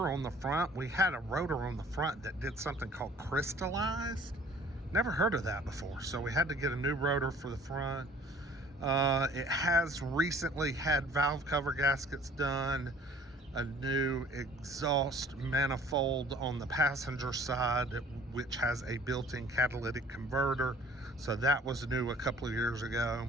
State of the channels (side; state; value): both; normal; correlation 0.52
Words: on the front. We had a rotor on the front that did something called crystallized. Never heard of that before. So we had to get a new rotor for the front. It has recently had valve cover gaskets done. a new exhaust manifold on the passenger side, which has a built-in catalytic converter. So that was new a couple of years ago.